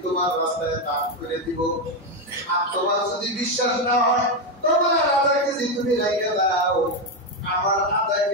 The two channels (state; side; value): normal; both; correlation 0.08